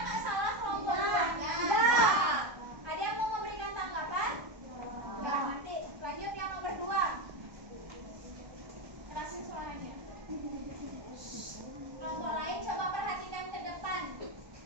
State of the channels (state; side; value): late; left; 1.3 ms